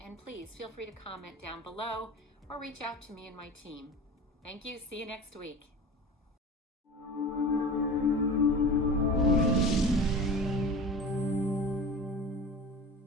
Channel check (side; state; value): both; normal; correlation 0.34